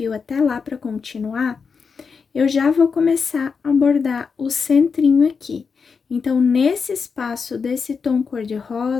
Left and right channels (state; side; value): quieter; right; 5.5 dB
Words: até lá para continuar, eu já vou começar a bordar o centrinho aqui. Então, nesse espaço desse tom